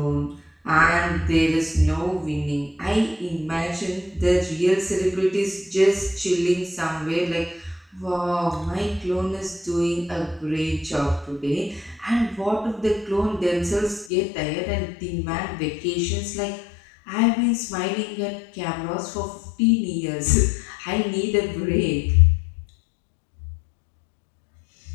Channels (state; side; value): drops out; right; at 14.1 s